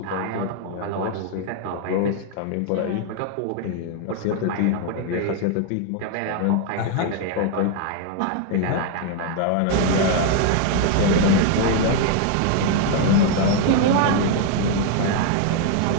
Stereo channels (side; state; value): both; different; correlation 0.00